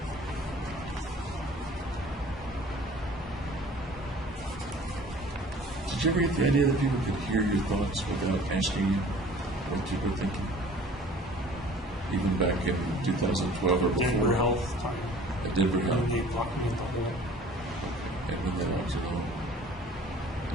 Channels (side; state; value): both; normal; correlation 0.49